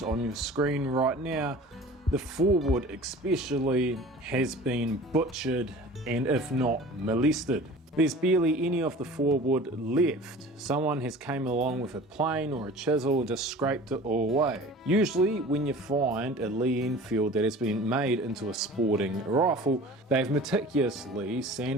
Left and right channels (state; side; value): normal; both; correlation 0.42